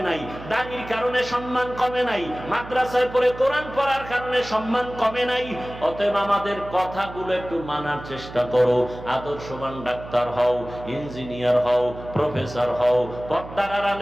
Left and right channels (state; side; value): noise; right; hum, 14 dB below the sound